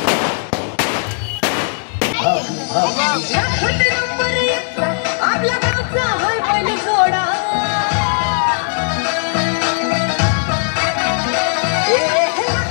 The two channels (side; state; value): right; silent; digital silence